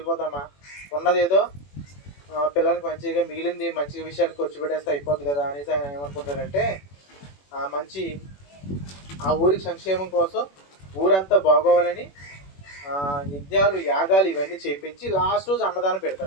ఉన్నదేదో పిల్లలకి మంచిగా మిగిలింది మంచి విషయాలకు ఖర్చు పెట్టేస్తే అయిపోద్ది కదా అనేసి ఆయన ఏమనుకుంటాడంటే మంచి ఆ ఊరికి సంక్షేమం కోసం ఊరంతా బాగోవాలని యజ్ఞాలు, యాగాలు ఇవన్నీ చేయించి లాస్ట్ రోజు అన్నదానం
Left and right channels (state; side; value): late; right; 21 ms